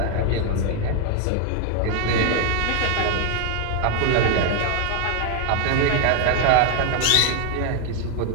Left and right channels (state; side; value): different; both; correlation 0.01